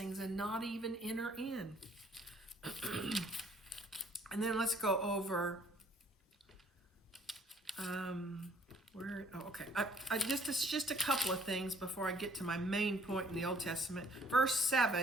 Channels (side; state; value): both; normal; correlation 0.59